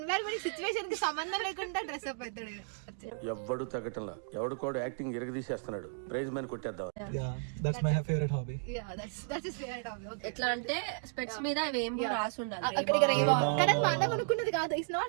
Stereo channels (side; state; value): left; silent; digital silence